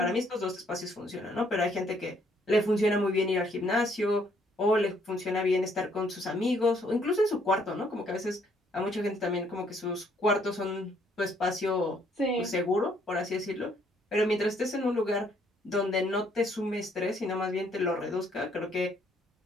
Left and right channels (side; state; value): both; normal; correlation 0.67